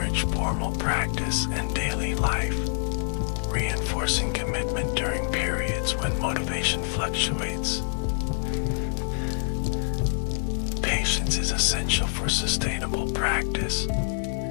formal practice and daily life, reinforcing commitment during periods when motivation fluctuates. Patience is essential for sustainable practice.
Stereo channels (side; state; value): right; silent; digital silence